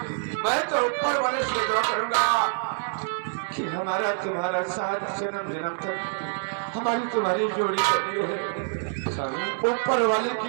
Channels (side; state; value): left; silent; digital silence